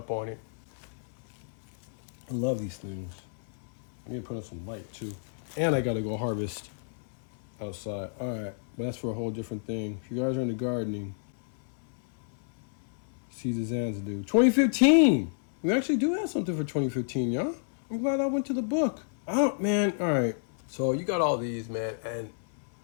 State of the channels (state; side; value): silent; right; 58 dB below the other